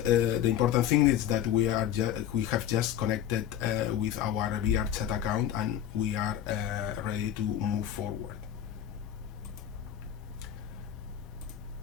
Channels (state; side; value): quieter; right; 10.6 dB